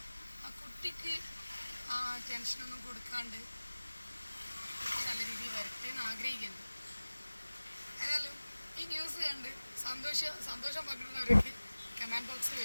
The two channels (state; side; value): inverted; both; correlation -1.00